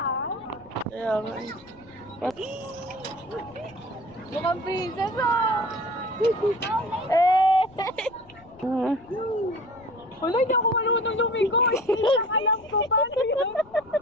Kaya nga. Mukhang princess ah! Eh. Wala, hindi ako marunong lumigo eh. Alam ko, paano yun?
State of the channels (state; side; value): noise; left; rumble, 26 dB below the sound